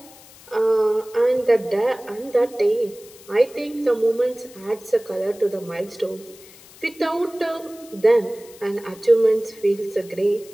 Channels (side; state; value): left; noise; hiss, 22 dB below the sound